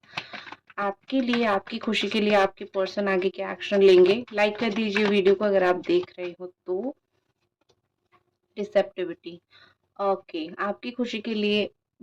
आपके लिए, आपकी खुशी के लिए आपके पर्सन आगे क्या एक्शन लेंगे, लाइक कर दीजिए वीडियो को अगर आप देख रहे हो तो। रिसेप्टिविटी, ओके, आपकी खुशी के लिए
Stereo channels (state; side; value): identical; both; correlation 1.00